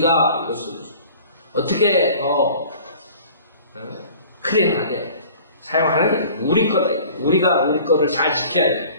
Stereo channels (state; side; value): inverted; both; correlation -0.47